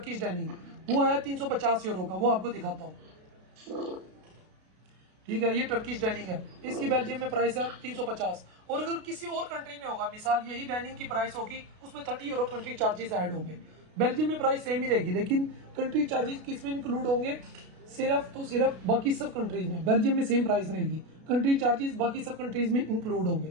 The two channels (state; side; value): late; left; 33 ms